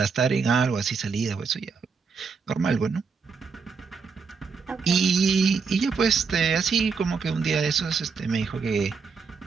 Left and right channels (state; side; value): quieter; left; 5.3 dB